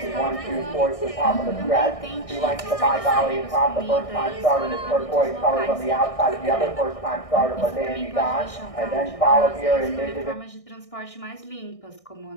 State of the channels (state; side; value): late; right; 1.6 ms